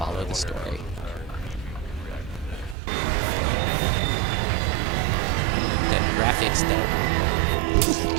the story. Then graphics done.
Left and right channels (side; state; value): left; drops out; at 2.8 s